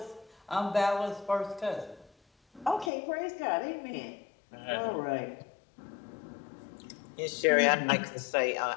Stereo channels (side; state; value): right; drops out; at 2.9 s